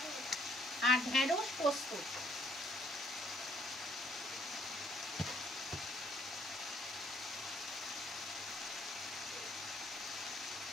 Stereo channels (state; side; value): normal; both; correlation 0.66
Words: আর ঢেঁড়স পোস্ত।